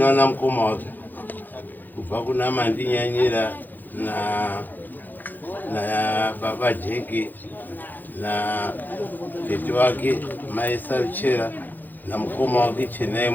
mukoma wake kubva kuna Mandinyanyira na baba Jeki na tete wake mai Saruchera na mukoma wake Chenai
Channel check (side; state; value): right; late; 0.087 ms